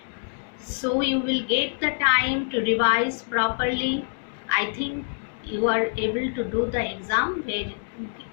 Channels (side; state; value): right; silent; digital silence